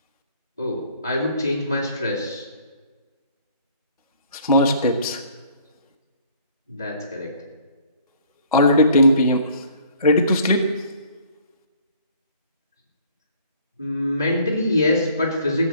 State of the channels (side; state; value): both; inverted; correlation -0.56